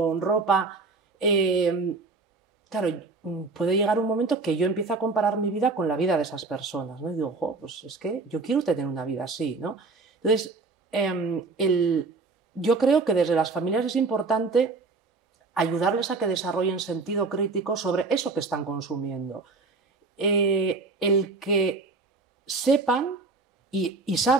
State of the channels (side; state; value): left; quieter; 3.9 dB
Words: ropa, claro, puede llegar un momento que yo empiezo a comparar mi vida con la vida de esas personas, ¿no? Y digo, pues es que yo quiero tener una vida así, ¿no? Entonces, yo creo que desde las familias es importante ayudarles a que desarrollen sentido crítico sobre eso que están consumiendo. El que sepan y